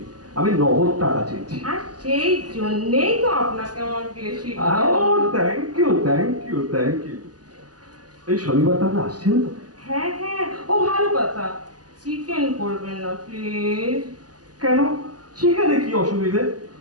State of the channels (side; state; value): left; late; 0.69 ms